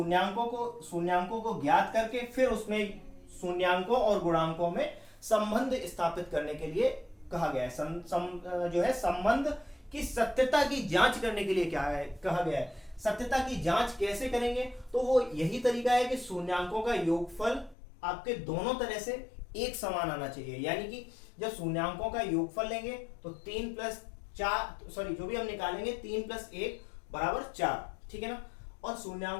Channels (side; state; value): right; drops out; at 17.8 s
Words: को ज्ञात करके फिर उसमें शून्यांकों और गुणांकों में संबंध स्थापित करने के लिए कहा गया है। जो है संबंध की सत्यता की जांच करने के लिए क्या है कहा गया है। सत्यता की जांच कैसे करेंगे, तो वो यही तरीका है कि शून्यांकों का योगफल आपके दोनों तरह से एक समान आना चाहिए, यानी कि जब शून्यांकों का योगफल लेंगे तो 3 प्लस 4, सॉरी जो भी हम निकालेंगे 3 प्लस 1 बराबर 4, ठीक है ना, और